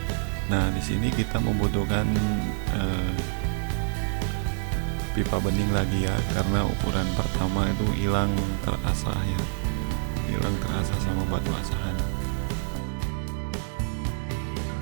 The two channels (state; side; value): silent; left; digital silence